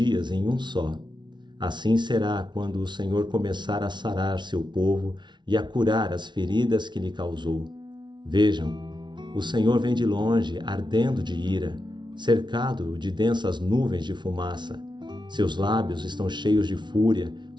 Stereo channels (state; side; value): late; left; 0.22 ms